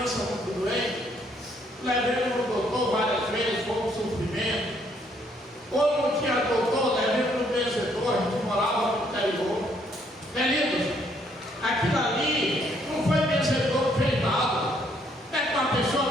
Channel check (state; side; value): normal; both; correlation 0.68